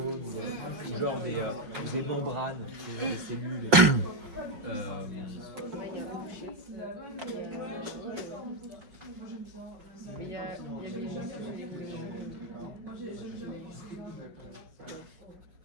ou genre des membranes, des cellules. Il y a des gens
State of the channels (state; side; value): late; left; 5.5 ms